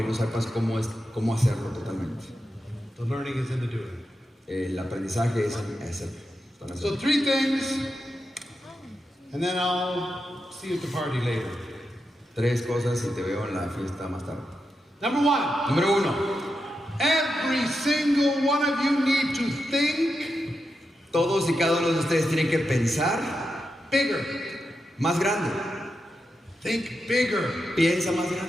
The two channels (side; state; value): both; normal; correlation 0.87